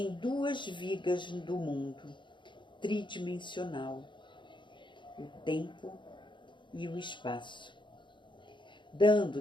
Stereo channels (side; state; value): right; late; 0.23 ms